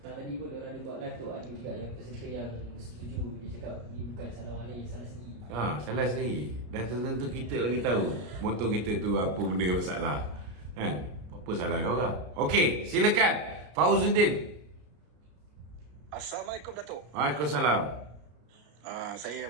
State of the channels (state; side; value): late; left; 33 ms